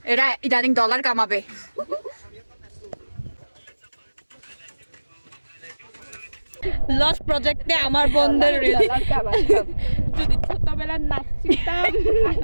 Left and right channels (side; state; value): both; inverted; correlation -1.00